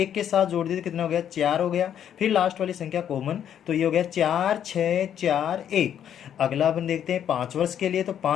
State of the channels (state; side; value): quieter; right; 9.6 dB